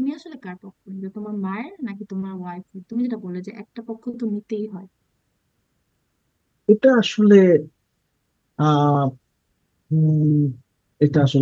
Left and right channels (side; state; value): both; identical; correlation 1.00